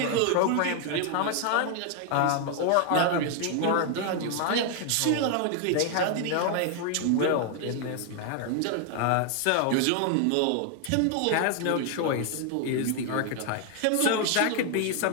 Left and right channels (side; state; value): both; different; correlation 0.00